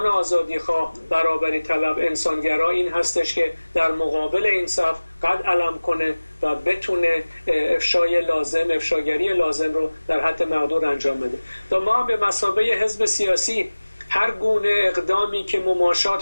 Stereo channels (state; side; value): inverted; both; correlation -1.00